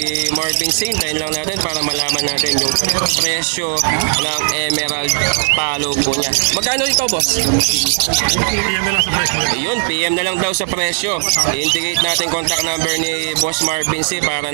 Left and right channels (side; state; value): left; silent; digital silence